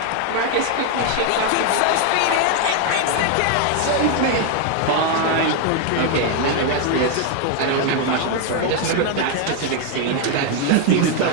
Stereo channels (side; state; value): both; different; correlation 0.00